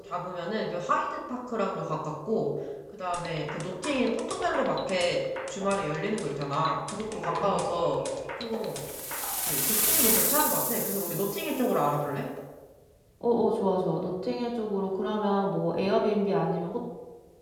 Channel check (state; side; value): identical; both; correlation 1.00